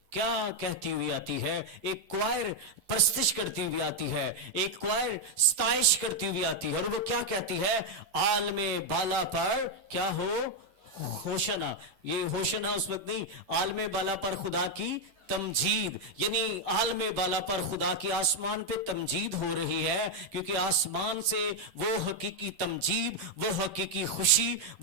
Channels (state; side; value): late; left; 10 ms